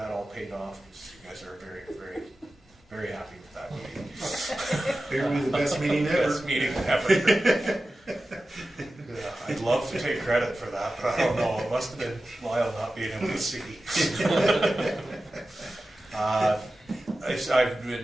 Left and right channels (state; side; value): normal; both; correlation 0.94